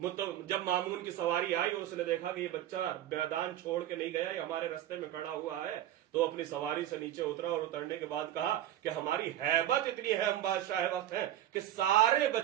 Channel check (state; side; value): quieter; left; 12.4 dB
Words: مامون کی سواری آئی اور اس نے دیکھا کہ یہ بچہ میدان چھوڑ کے نہیں گیا یہ ہمارے رستے میں کھڑا ہوا ہے تو اپنی سواری سے نیچے اترا اور اترنے کے بعد کہا کہ ہماری ہیبت اتنی ہے ہم بادشاہ وقت ہیں کہ سارے